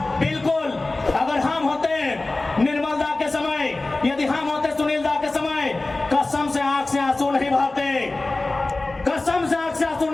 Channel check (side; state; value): right; quieter; 3.1 dB